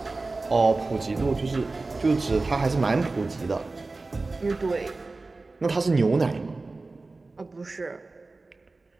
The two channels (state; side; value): quieter; left; 3.5 dB